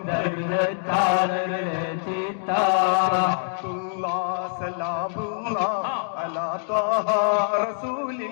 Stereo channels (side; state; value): right; silent; digital silence